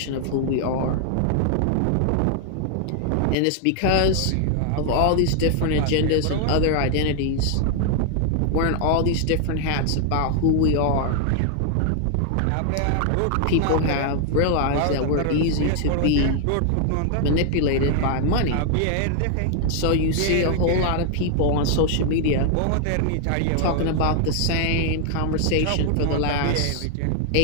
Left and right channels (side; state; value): both; different; correlation 0.00